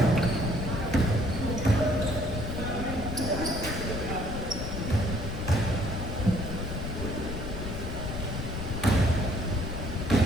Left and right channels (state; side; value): noise; left; rumble, 5 dB below the sound